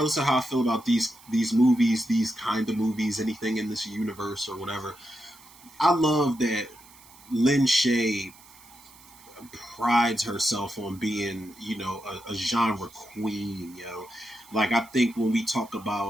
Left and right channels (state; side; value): noise; right; hiss, 23 dB below the sound